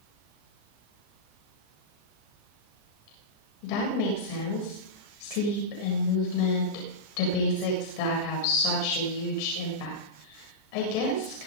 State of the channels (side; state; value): right; late; 13 ms